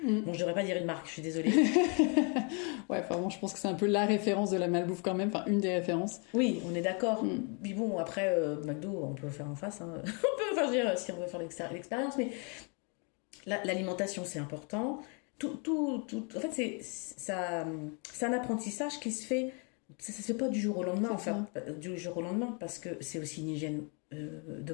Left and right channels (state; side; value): quieter; right; 35.9 dB